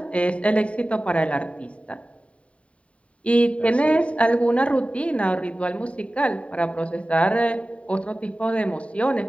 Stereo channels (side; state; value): right; late; 0.063 ms